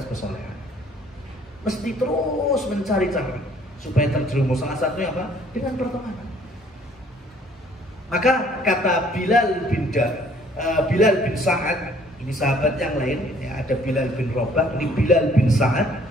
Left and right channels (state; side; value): normal; both; correlation 0.59